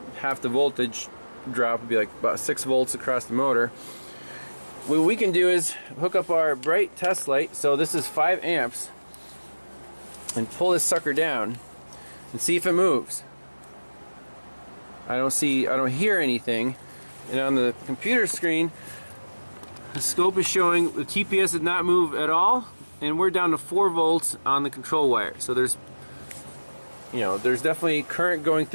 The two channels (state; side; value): inverted; both; correlation -1.00